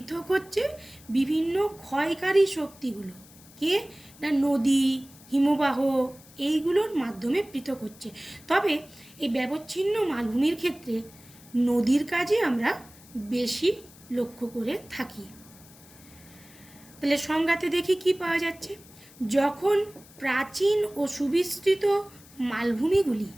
হচ্ছে বিভিন্ন ক্ষয়কারী শক্তিগুলো। কে? না, নদী, হিমবাহ, এইগুলোর মাধ্যমে পৃথক হচ্ছে। তবে এই ব্যবচ্ছিন্ন মালভূমির ক্ষেত্রে নদীর কাজে আমরা বেশি লক্ষ্য করে থাকি। তাহলে সংজ্ঞাতে দেখি কি পাওয়া যাচ্ছে। যখন প্রাচীন ও সুবিস্তৃত মালভূমিগুলি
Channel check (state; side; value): noise; left; hiss, 23 dB below the sound